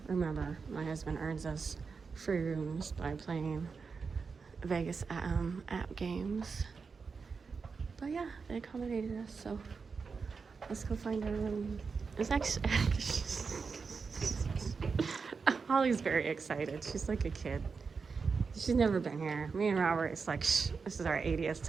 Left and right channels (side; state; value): left; quieter; 5.1 dB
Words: Remember, my husband earns us free rooms by playing Vegas app games. But yeah, they accommodated us, so let's go find our room. It's actually Holly's very excited. She's like a kid. She's never been here. Me and Robert, it's like, this is our 80th